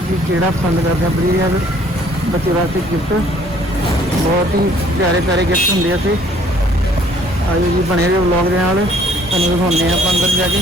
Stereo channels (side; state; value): both; normal; correlation 0.59